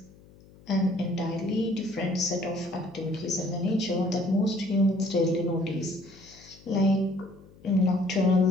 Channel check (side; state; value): left; noise; hum, 24 dB below the sound